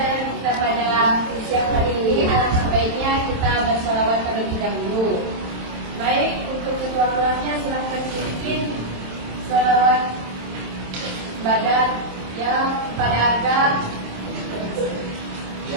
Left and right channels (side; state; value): left; late; 27 ms